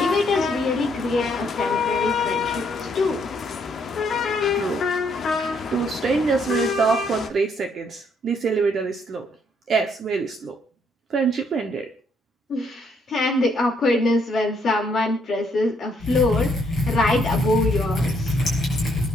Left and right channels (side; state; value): both; normal; correlation 0.70